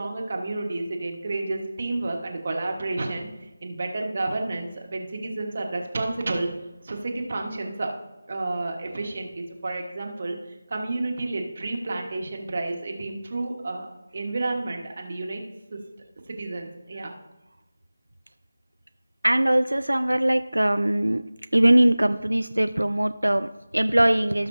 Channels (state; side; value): inverted; both; correlation -0.98